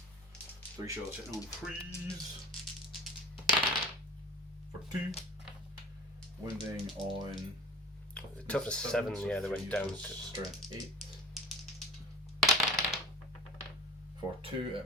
3 shots hitting on 3s. For 2. Wounding on. Toughness 7, so yeah, they went 3 down is to. strength 8. For 2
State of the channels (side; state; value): both; normal; correlation 0.40